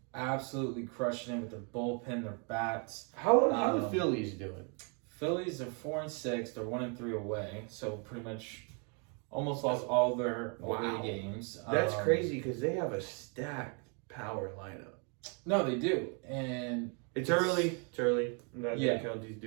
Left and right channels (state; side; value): quieter; left; 37.0 dB